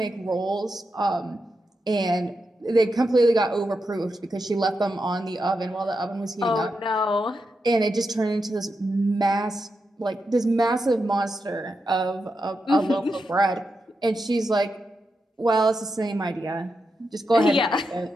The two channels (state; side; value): normal; both; correlation 0.86